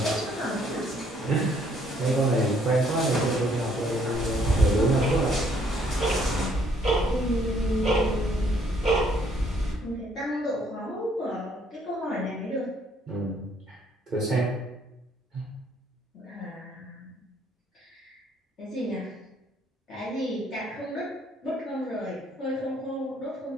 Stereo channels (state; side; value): normal; both; correlation 0.66